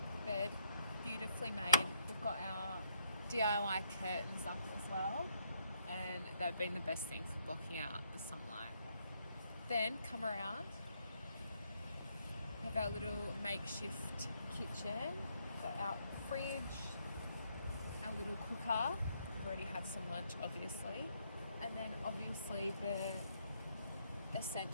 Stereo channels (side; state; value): both; inverted; correlation -0.72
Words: Bed. Beautifully made. We've got our DIY curtains up as well, and they've been the best thing for blocking out the sunlight. Then come around, have our little makeshift kitchen, got our fridge, our little cooker. We've already had some lunch obviously, and then obviously the